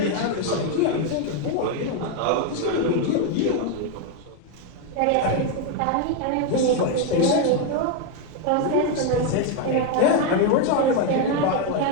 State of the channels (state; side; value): different; both; correlation 0.02